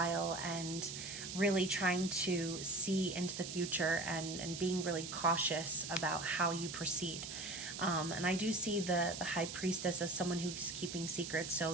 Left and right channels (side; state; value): right; noise; hiss, 7 dB below the sound